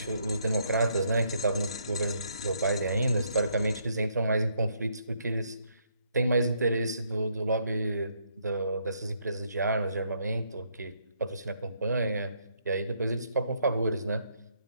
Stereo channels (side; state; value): both; inverted; correlation -0.72